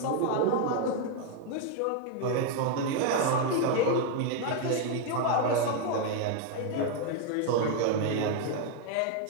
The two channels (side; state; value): both; different; correlation 0.00